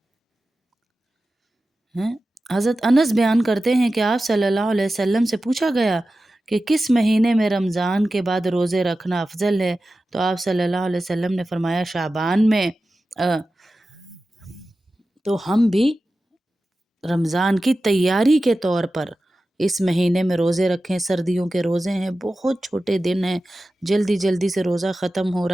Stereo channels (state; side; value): normal; both; correlation 0.94